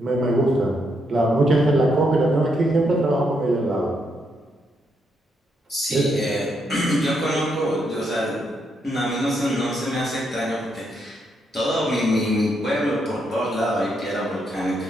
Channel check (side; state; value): both; normal; correlation 0.78